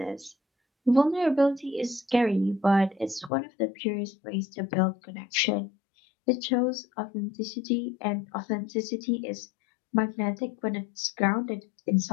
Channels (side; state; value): right; drops out; at 3.3 s